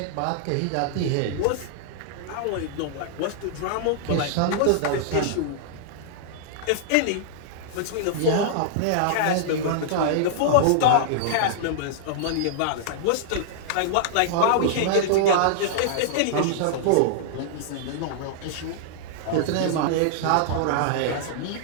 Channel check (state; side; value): different; both; correlation -0.01